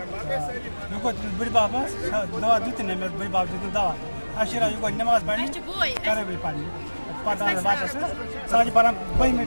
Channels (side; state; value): both; inverted; correlation -1.00